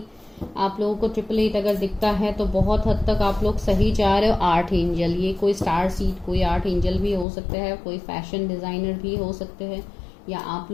आप लोगों को 888 अगर दिखता है तो बहुत हद तक आप लोग सही जा रहे हो। 8 एंजल, ये कोई स्टार सीड, कोई 8 एंजल भी हो सकते हैं, कोई फैशन डिजाइनर भी हो सकते हैं, या आप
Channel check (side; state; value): right; drops out; at 7.2 s